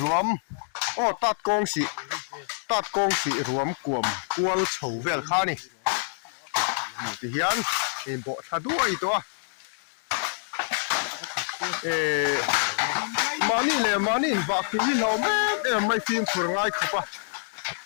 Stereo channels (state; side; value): silent; right; digital silence